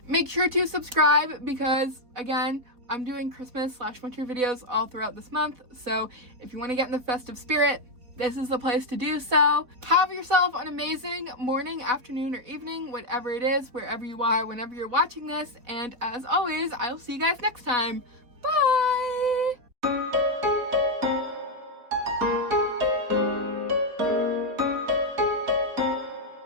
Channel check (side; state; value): left; late; 4.3 ms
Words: Make sure to subscribe because, again, I'm doing Christmas/winter videos all throughout this month, so if you want to get in the festive spirit, this is the place to do so. Have yourself an amazing morning, afternoon, or evening, whatever it is, wherever you are, whenever you're watching this, and as always, I'll see you guys next time. Bye!